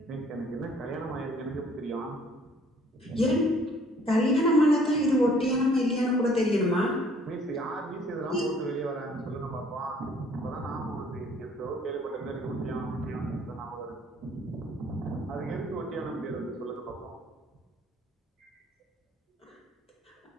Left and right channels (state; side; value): normal; both; correlation 0.58